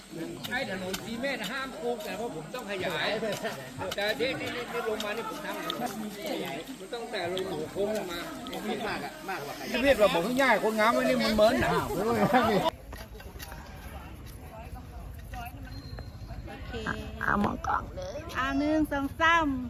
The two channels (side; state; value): both; identical; correlation 1.00